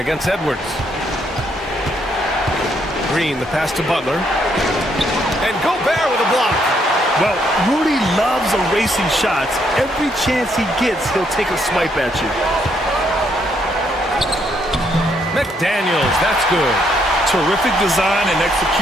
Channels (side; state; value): both; normal; correlation 0.72